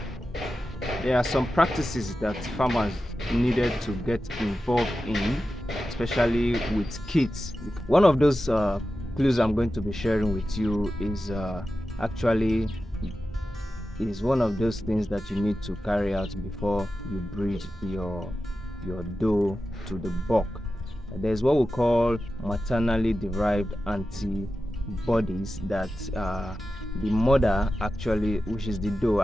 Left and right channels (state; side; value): normal; both; correlation 0.92